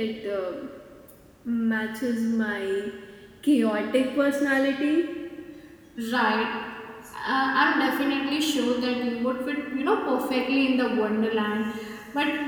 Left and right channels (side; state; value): both; identical; correlation 1.00